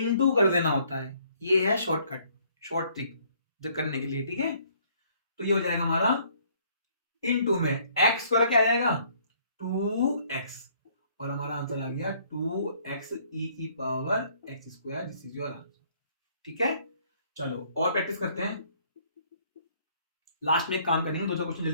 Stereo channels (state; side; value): inverted; both; correlation -0.63